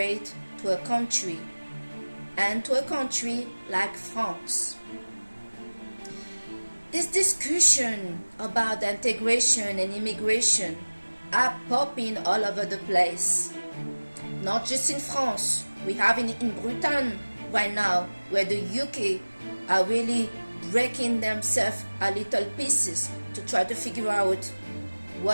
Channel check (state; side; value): inverted; both; correlation -1.00